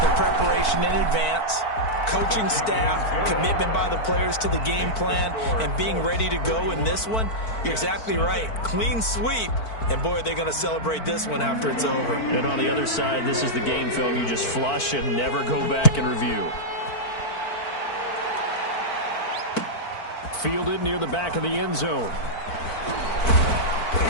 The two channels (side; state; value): right; late; 4.5 ms